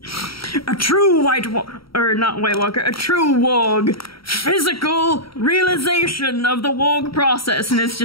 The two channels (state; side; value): late; right; 0.75 ms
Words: A true a true warg. Physical realization of the warg process, and it's